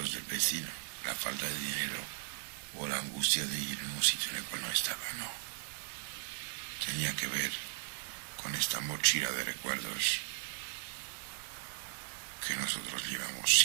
del vecino, la falta de dinero, o la angustia de ir en un sitio en el cual no estaba, no. Tenía que ver con esta mochila de recuerdos que nosotros llevamos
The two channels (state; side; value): silent; left; 53 dB below the other